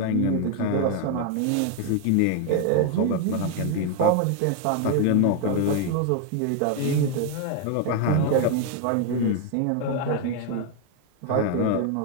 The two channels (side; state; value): both; different; correlation 0.01